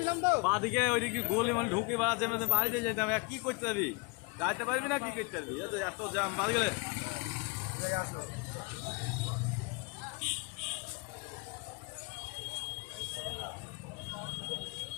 তো বাদিকে ওইদিকে গোলি মানে ঢুকে বেড়াচ্ছে বাড়িতে যেতাম কি করতে পারবি যাইতে পারবি না কি করতে পারবি এত জ্যাম বাড়ি গেলে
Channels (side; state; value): right; quieter; 29.9 dB